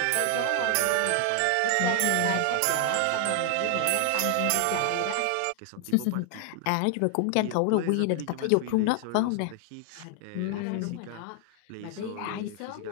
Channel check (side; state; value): both; different; correlation 0.00